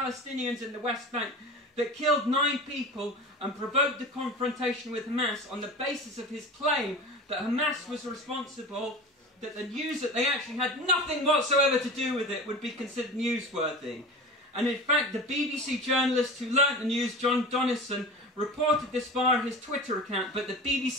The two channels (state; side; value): normal; both; correlation 0.33